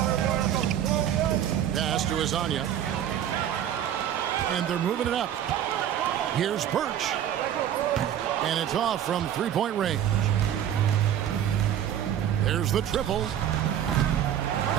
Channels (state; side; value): quieter; left; 10.4 dB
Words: Pass to Hezonja. And they're moving it up. Here's Birch. And it's off from 3-point range. There's the triple.